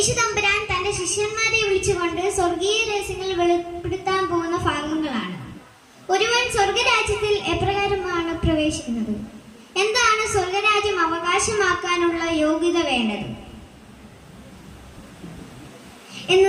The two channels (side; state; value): both; identical; correlation 1.00